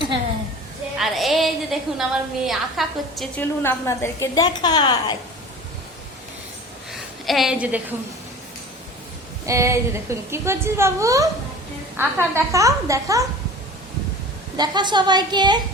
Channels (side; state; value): both; normal; correlation 0.39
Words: আর এই যে দেখুন আমার মেয়ে আঁকা করছে, চলুন আপনাদেরকে দেখায়। এই যে দেখুন, এই যে দেখুন কি করছিস বাবু? আঁকা দেখাও, দেখাও, দেখা সবাইকে,